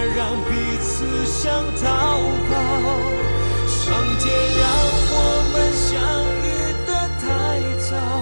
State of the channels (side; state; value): both; inverted; correlation -1.00